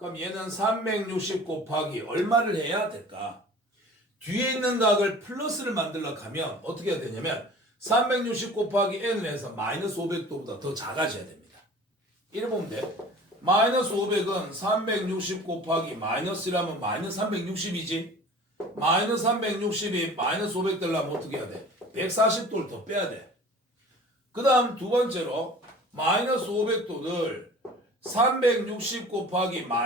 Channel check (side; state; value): both; normal; correlation 0.44